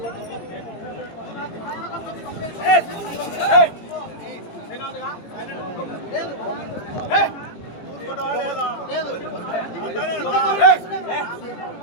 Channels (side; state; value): right; late; 18 ms